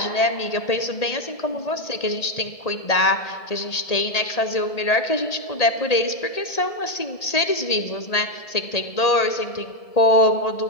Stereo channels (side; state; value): right; late; 1.7 ms